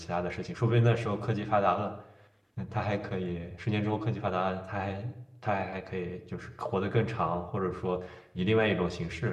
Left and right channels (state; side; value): identical; both; correlation 1.00